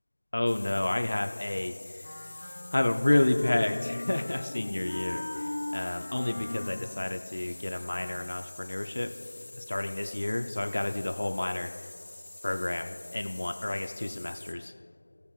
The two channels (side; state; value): both; inverted; correlation -1.00